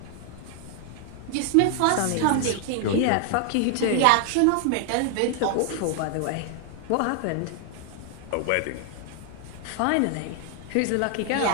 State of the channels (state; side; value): different; both; correlation 0.00